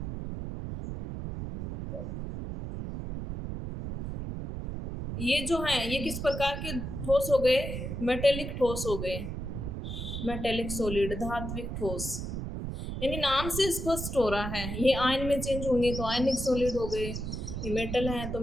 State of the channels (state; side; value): noise; right; rumble, 5 dB below the sound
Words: ये जो हैं ये किस प्रकार के ठोस हो गए, मेटेलिक ठोस हो गए, मेटेलिक सॉलिड, धात्विक ठोस। यानी नाम से स्पष्ट हो रहा है ये आयन में चेंज होंगे तो आयनिक सॉलिड हो गए, ये मेटल है तो